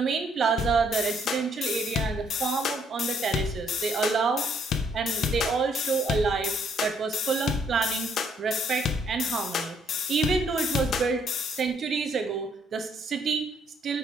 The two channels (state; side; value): normal; both; correlation 0.68